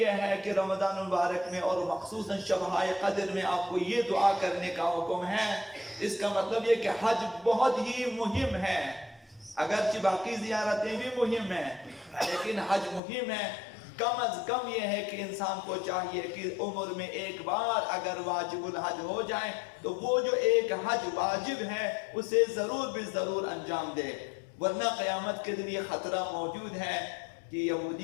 ہے کہ رمضان المبارک میں اور مخصوصاً شبہائے قدر میں آپ کو یہ دعا کرنے کا حکم ہے۔ اس کا مطلب یہ کہ حج بہت ہی مہم ہے، اگرچہ باقی زیارتیں بھی مہم ہیں لیکن حج مہم ہے۔ کم از کم یہ ہے کہ انسان کو چاہیے کہ عمر میں ایک بار اگر واجب الحج ہو جائے تو وہ جو ایک حج واجب ہے اسے ضرور بھی ضرور انجام دے، ورنہ قیامت کے دن یہ خطرہ موجود ہے کہ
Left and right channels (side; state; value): right; drops out; at 13.0 s